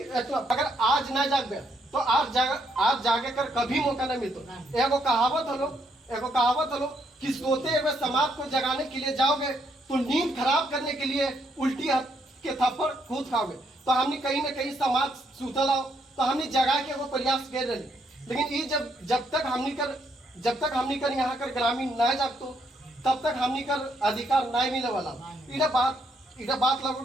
अगर आज ना जागे तो आज जागे कर कभी मौका नहीं मिलता। एगो कहावत हलो कि सोते हुए समाज को जगाने के लिए जाओगे तो नींद खराब करने के लिए उल्टी के थप्पड़ खुद खाओगे। तो हमने कहीं ना कहीं समाज सुतल आओ तो हमने जगा के वो प्रयास कर रहे, लेकिन ये जब तक हमनी कर यहाँ कर ग्रामीण ना जागतो तब तक हमनी कर अधिकार नहीं मिले वाला। इधर बात लगो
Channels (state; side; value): normal; both; correlation 0.74